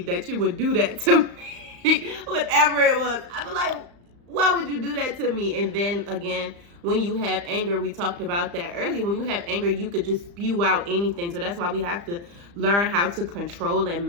that you would do that to me. Whatever it was, I was like, why would you do that to me? And then again, when you have anger, we talked about that earlier. When you have anger, you could just spew out anything. So that's why we have to learn how to control and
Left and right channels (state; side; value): late; left; 35 ms